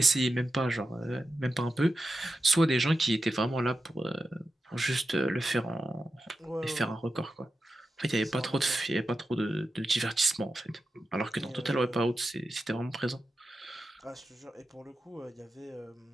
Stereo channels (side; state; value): both; normal; correlation 0.91